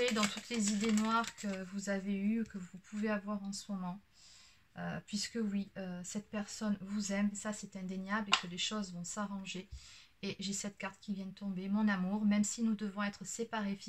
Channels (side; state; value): both; identical; correlation 1.00